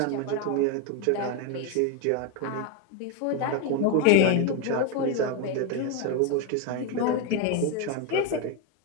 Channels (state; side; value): different; both; correlation 0.02